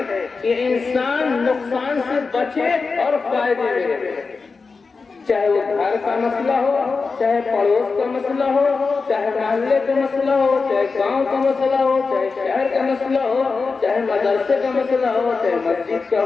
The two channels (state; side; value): quieter; right; 4.5 dB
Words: یہ انسان نقصان سے بچے اور فائدے میں رہے، چاہے وہ گھر کا مسئلہ ہو، چاہے پڑوس کا مسئلہ ہو، چاہے محلے کا مسئلہ ہو، چاہے گاؤں کا مسئلہ ہو، چاہے شہر کا مسئلہ ہو، چاہے مدرسے کا مسئلہ ہو، چاہے مسجد کا